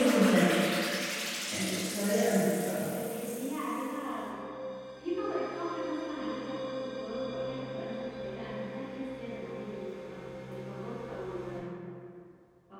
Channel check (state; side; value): identical; both; correlation 1.00